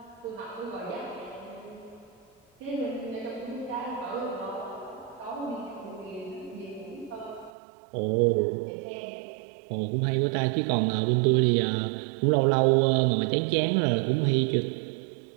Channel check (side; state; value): left; drops out; at 7.5 s